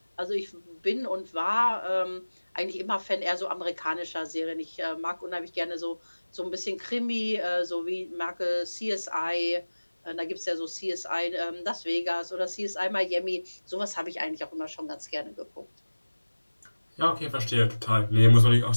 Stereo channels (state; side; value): inverted; both; correlation -1.00